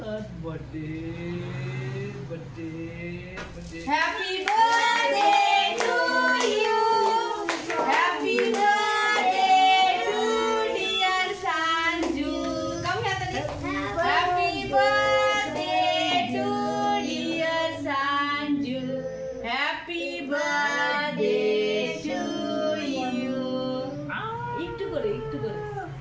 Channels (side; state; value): both; identical; correlation 1.00